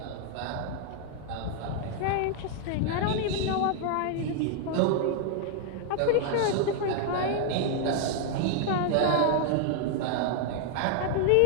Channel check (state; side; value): different; both; correlation 0.00